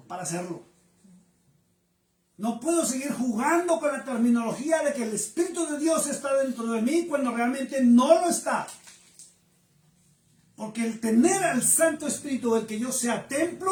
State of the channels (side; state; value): both; identical; correlation 1.00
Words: para hacerlo. No puedo seguir jugando con la terminología de que el Espíritu de Dios está dentro de mí cuando realmente no lo está. Porque el tener al Santo Espíritu, el que yo sea